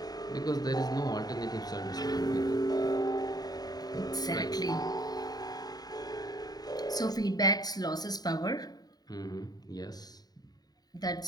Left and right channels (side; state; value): right; late; 0.19 ms